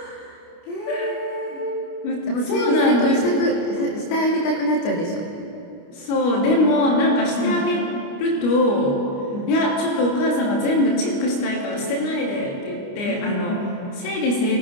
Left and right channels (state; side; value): late; right; 29 ms